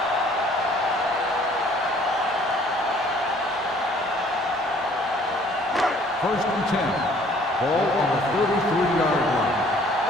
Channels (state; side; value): normal; both; correlation 0.57